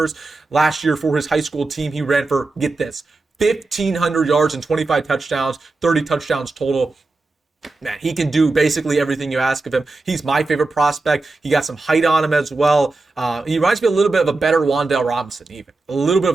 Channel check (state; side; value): quieter; left; 3.4 dB